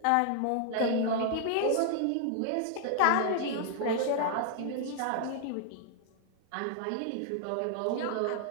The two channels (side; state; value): both; different; correlation 0.00